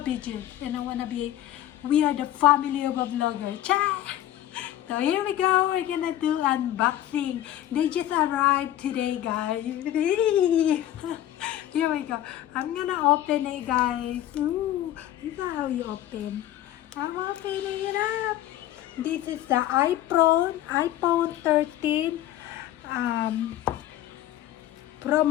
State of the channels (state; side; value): quieter; right; 12.9 dB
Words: beaches and I want to be, we are the family of a vlogger. Cha! So here we go, we're gonna do unboxing. They just arrived today guys. Here we go. I'm gonna open it guys. Ooh, this is how you open. I'm opening it up. This is the iPhone 13 Pro